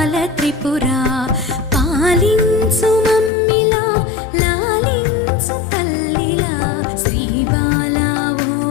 త్రిపురా పాలించు మమ్మిలా లాలించు తల్లిలా శ్రీ బాలా ఓ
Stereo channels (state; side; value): drops out; right; at 3.3 s